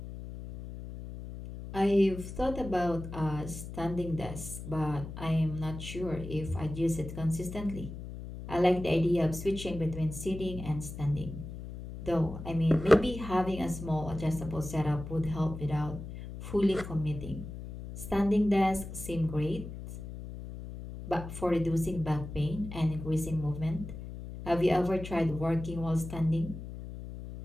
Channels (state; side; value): noise; left; hum, 10 dB below the sound